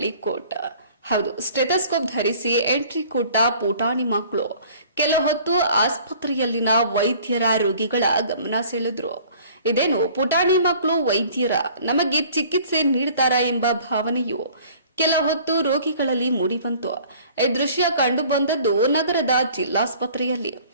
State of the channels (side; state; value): both; inverted; correlation -0.51